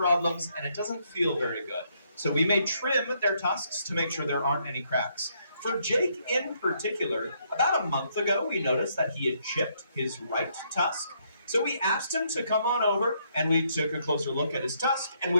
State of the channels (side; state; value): both; inverted; correlation -0.72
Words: and it doesn't feel very good. So we may trim their tusks to make sure there aren't any cracks. For Jake in particular, about a month ago, we noticed that he had chipped his right tusk. So we asked him to come on over and we took a closer look at his tusk and